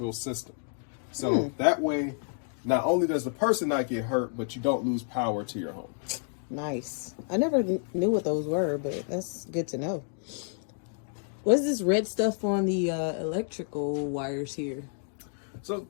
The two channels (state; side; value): silent; right; 58 dB below the other